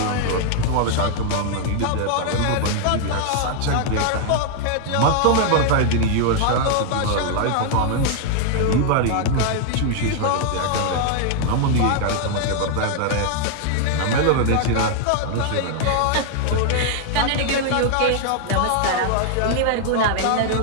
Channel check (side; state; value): both; different; correlation 0.00